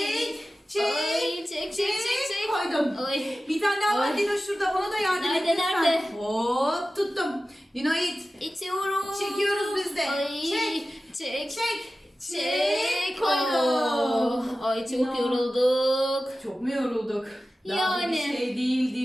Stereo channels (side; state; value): both; normal; correlation 0.95